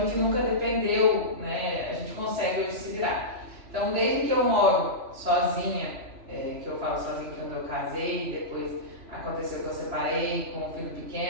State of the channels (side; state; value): left; late; 2.7 ms